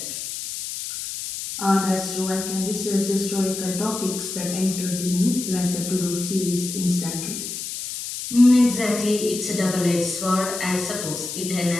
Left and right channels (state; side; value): noise; left; hiss, 6 dB below the sound